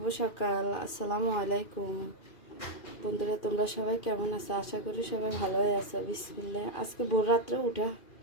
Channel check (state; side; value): late; right; 2.5 ms